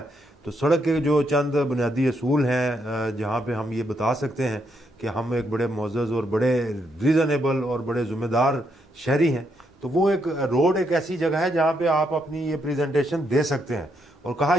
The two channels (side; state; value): both; normal; correlation 0.78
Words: तो सड़क के जो चंद बुनियादी असूल हैं जहाँ पे हम ये बता सकते हैं कि हम एक बड़े मुअज़्ज़ज़ और बड़े रीज़नेबल और बड़े ज़िम्मेदार शहरी हैं, तो वो एक रोड एक ऐसी जगह है जहाँ पे आप अपनी ये प्रेजेंटेशन दे सकते हैं। और कहा